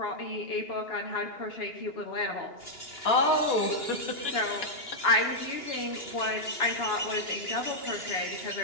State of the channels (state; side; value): late; right; 2.9 ms